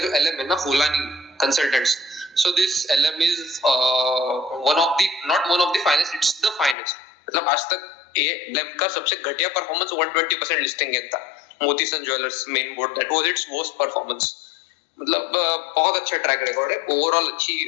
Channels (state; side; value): drops out; right; at 6.8 s